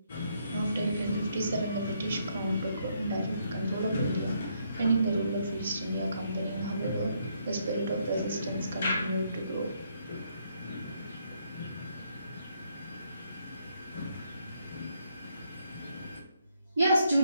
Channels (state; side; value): inverted; both; correlation -0.74